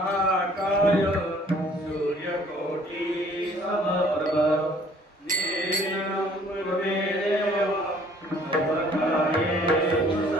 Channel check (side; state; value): both; normal; correlation 0.57